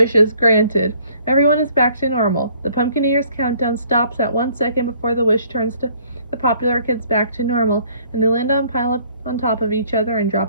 is granted. Everyone is back to normal. The Pumpkinator's countdown stops at 1 second before the wish turns to the popular kids back to normal, and they land on pile up on top of each other and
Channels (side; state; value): both; inverted; correlation -0.60